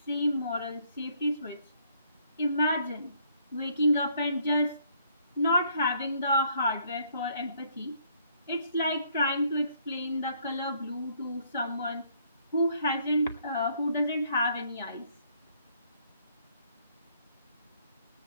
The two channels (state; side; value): inverted; both; correlation -0.67